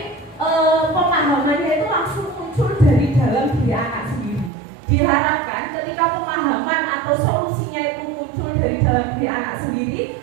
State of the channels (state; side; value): drops out; left; at 4.5 s